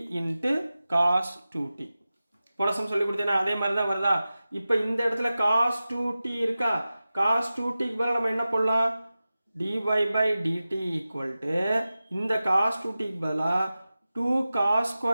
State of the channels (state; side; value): inverted; both; correlation -0.95